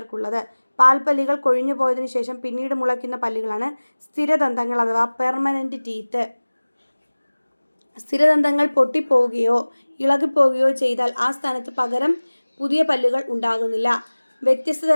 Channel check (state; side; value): inverted; both; correlation -1.00